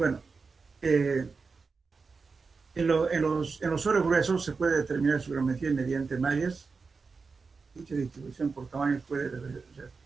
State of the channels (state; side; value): quieter; left; 4.7 dB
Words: eh, en los soros gruesos se puede determinar su gravimetría mediante mallas. Dicha distribución por tamaños puede